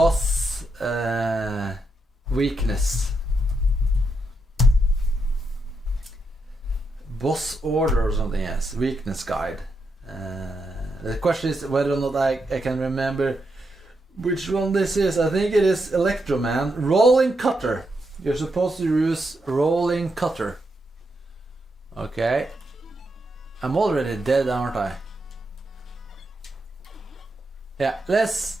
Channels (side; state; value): both; normal; correlation 0.82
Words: weakness. Boss order or something, yes. Weakness guide. The question is whether or not I can remember which one this is. I think it is Electro Man. Rolling cutter. You're supposed to use rolling cutter. Okay. I'm already dead, aren't I? Yeah, let's